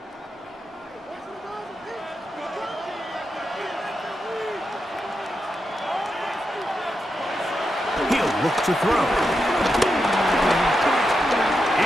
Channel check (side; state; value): both; normal; correlation 0.86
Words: He'll look to throw.